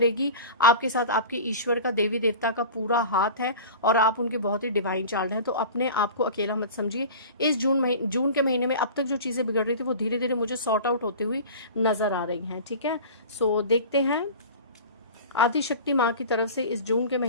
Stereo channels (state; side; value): inverted; both; correlation -0.36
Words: आपके साथ आपके ईश्वर का, देवी देवता का पूरा हाथ है और आप उनके बहुत ही डिवाइन चाइल्ड हैं। तो अपने आप को अकेला मत समझिए। इस जून के महीने में अब तक जो चीजें बिगड़ रही थी वो धीरे धीरे मुझे सॉर्ट आउट होती हुई नजर आ रही हैं, ठीक है। सो देखते हैं आदिशक्ति माँ की तरफ से इस जून के